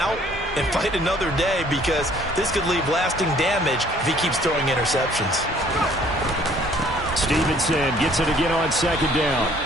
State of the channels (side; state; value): both; normal; correlation 0.58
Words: and fight another day, because this could leave lasting damage if he keeps throwing interceptions. Stevenson gets it again on 2nd down.